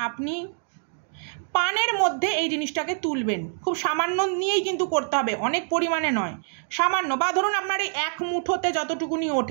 আপনি পানের মধ্যে এই জিনিসটাকে তুলবেন, খুব সামান্য নিয়েই কিন্তু করতে হবে, অনেক পরিমাণে নয়, সামান্য, বা ধরুন আপনার এই এক মুঠোতে যতটুকুনি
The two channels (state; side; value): silent; left; 61 dB below the other